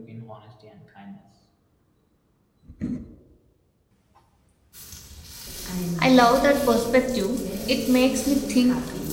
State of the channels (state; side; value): identical; both; correlation 1.00